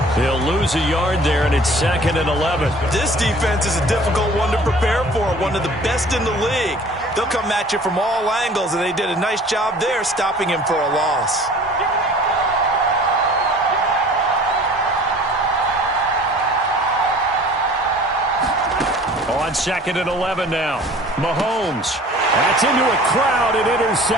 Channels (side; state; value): both; normal; correlation 0.48